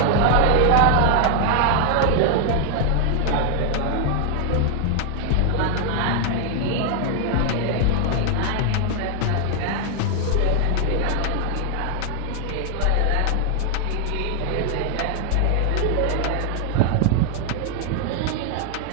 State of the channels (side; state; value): both; different; correlation 0.00